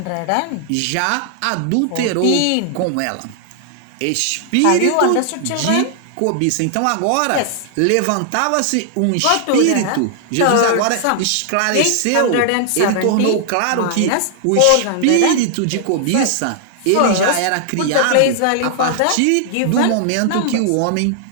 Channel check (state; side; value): different; both; correlation 0.00